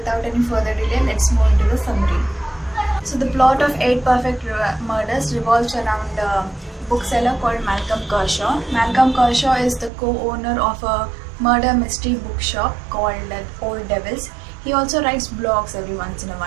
any further delay, let's move into the summary. So the plot of 8 Perfect Murders revolves around a bookseller called Malcolm Kershaw. Malcolm Kershaw is the co-owner of a murder mystery bookshop called Old Devils. He also writes blogs every once in a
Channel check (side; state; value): left; drops out; at 9.9 s